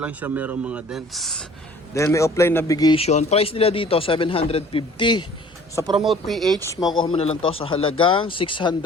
siya merong mga dents. Then may offline navigation. Price nila dito 750. Sa Promote PH, makukuha mo na lang to sa halagang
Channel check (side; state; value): both; normal; correlation 0.51